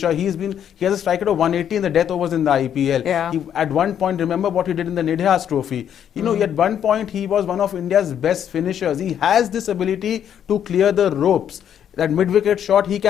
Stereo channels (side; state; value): right; quieter; 9.3 dB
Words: He has a strike rate of 180 in the death overs in the IPL. Yeah. He, at one point, remember what he did in the Nidhas Trophy. At one point he was one of India's best finishers. He has this ability to clear the ropes. That mid-wicket shot, he